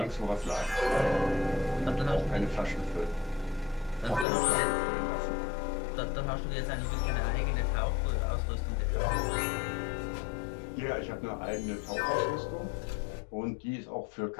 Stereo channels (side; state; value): right; drops out; at 4.2 s